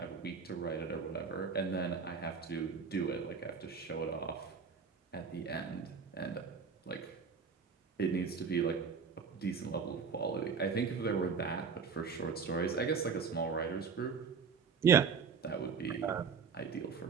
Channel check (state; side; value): quieter; left; 5.8 dB